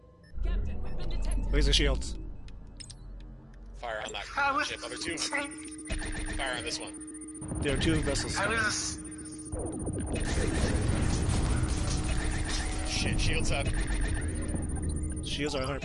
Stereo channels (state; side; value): identical; both; correlation 1.00